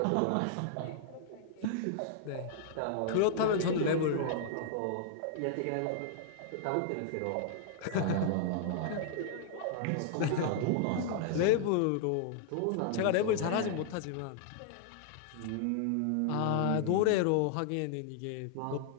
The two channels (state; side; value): different; both; correlation -0.01